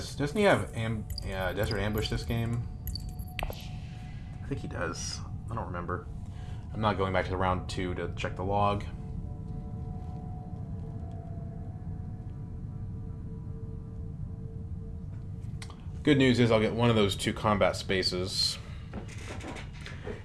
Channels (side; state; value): both; identical; correlation 1.00